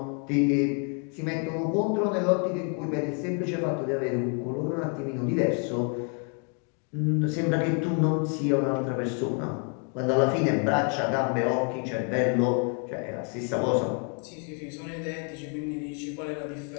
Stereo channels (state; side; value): quieter; right; 39.9 dB